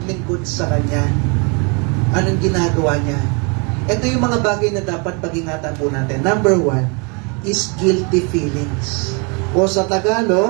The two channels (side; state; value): left; quieter; 33.3 dB